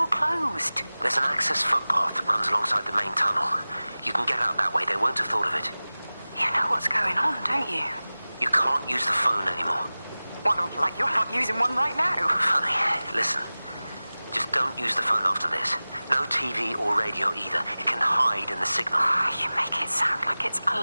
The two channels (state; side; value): inverted; both; correlation -0.98